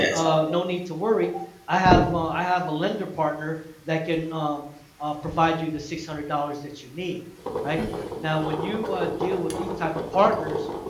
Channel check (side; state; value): both; identical; correlation 1.00